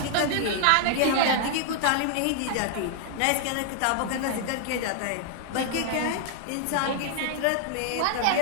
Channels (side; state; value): both; different; correlation 0.00